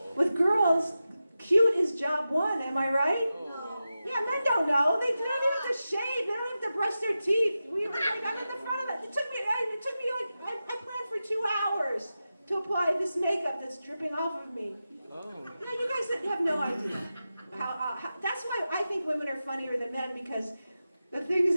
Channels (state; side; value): inverted; both; correlation -0.92